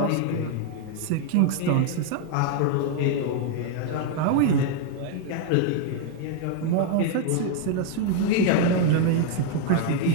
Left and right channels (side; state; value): both; different; correlation 0.00